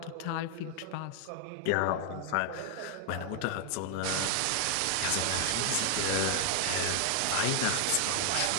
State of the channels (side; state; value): both; different; correlation 0.00